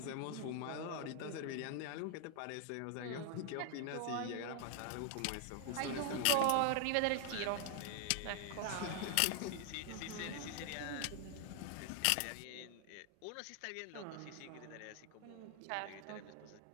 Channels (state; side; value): different; both; correlation 0.00